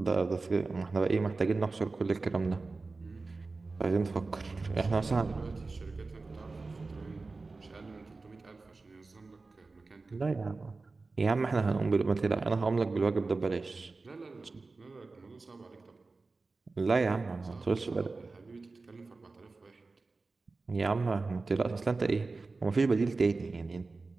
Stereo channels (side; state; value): left; quieter; 3.8 dB